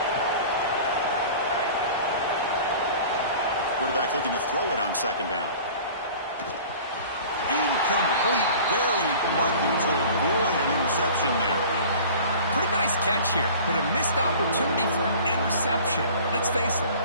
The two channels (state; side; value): inverted; both; correlation -0.43